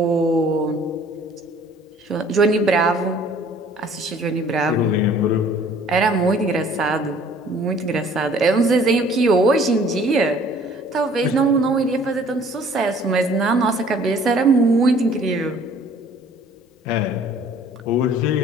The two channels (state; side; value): normal; both; correlation 0.54